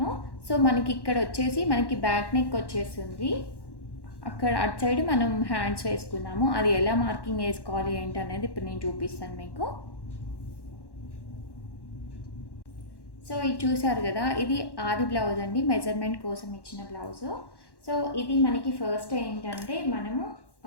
సో మనకి ఇక్కడ వచ్చేసి మనకి బ్యాక్ నెక్ వచ్చేస్తుంది. అక్కడ అటు సైడ్ మనం హ్యాండ్స్ వేసుకున్నాము. అది ఎలా మార్కింగ్ వేసుకోవాలి ఏంటి అనేది ఇప్పుడు నేను చూపిస్తాను మీకు. సో ఇది చూసారు కదా, ఇది ఆది బ్లౌజ్ అండి, మెజర్మెంట్ కోసం ఇచ్చిన బ్లౌజు. సో ఇది మనకి ఫస్ట్ ఏంటంటే, మనము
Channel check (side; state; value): right; late; 1.1 ms